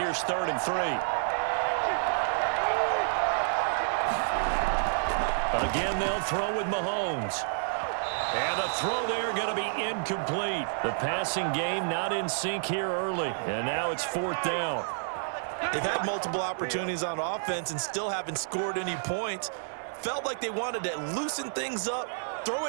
3rd and 3. Again, they'll throw with Mahomes. And the throw there going to be incomplete. The passing game not in sync here early. And now it's 4th down. They've had multiple opportunities on offense and still haven't scored any points. felt like they wanted to loosen things up, throw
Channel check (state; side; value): silent; left; 58 dB below the other